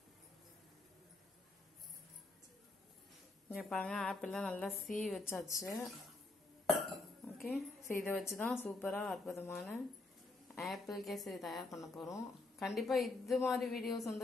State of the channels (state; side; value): quieter; right; 3.2 dB